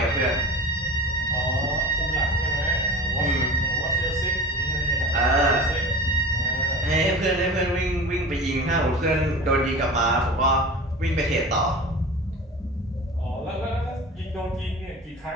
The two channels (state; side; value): normal; both; correlation 0.35